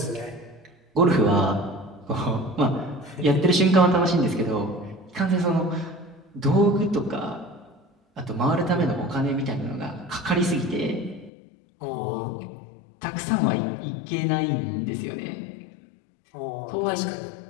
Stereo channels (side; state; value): right; drops out; at 11.3 s